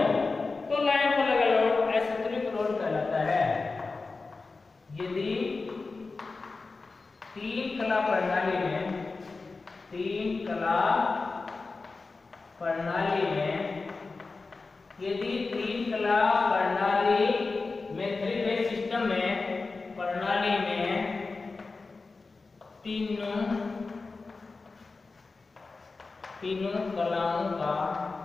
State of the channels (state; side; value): quieter; right; 3.9 dB